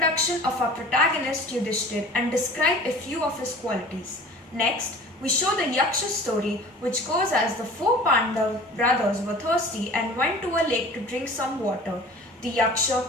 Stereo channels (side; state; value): both; normal; correlation 0.43